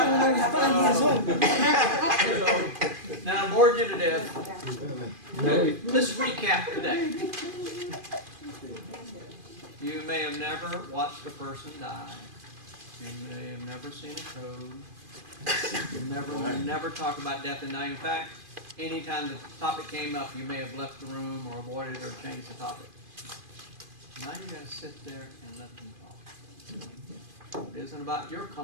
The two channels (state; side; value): late; left; 2.5 ms